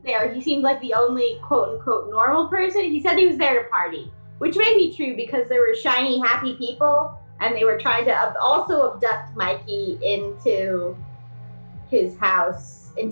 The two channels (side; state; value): both; inverted; correlation -1.00